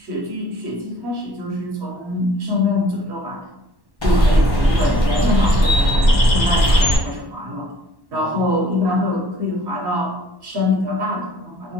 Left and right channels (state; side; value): late; left; 1.1 ms